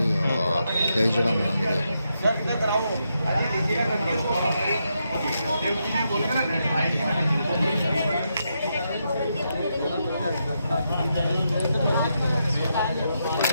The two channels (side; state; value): both; inverted; correlation -0.82